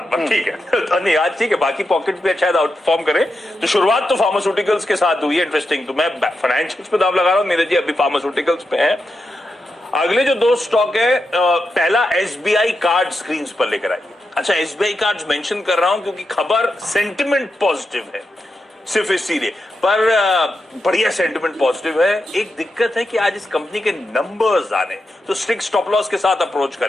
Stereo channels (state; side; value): normal; both; correlation 0.87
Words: ठीक है। नहीं, आज ठीक है, बाकी पॉकेट भी शायद आउट परफॉर्म करे। तो शुरुआत तो फार्मास्यूटिकल्स के साथ हुई है, इंटरेस्टिंग। तो मैं फाइनेंशियल्स पे दाव लगा रहा हूँ, नीरज जी अभी फार्मास्यूटिकल्स पे है। अगले जो 2 स्टॉक है, पहला एसबीआई कार्ड स्क्रीन पर लेकर आइए। अच्छा, एसबीआई कार्ड मेंशन कर रहा हूं क्योंकि खबर सेंटिमेंट पॉजिटिव है, सिर्फ इसीलिए, पर बढ़िया सेंटिमेंट पॉजिटिव है। एक दिक्कत है कि आज इस कंपनी के नंबर्स आने, तो स्ट्रिक्ट स्टॉप लॉस के साथ अप्रोच